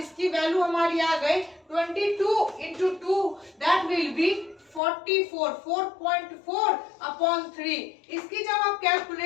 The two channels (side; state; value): right; drops out; at 4.8 s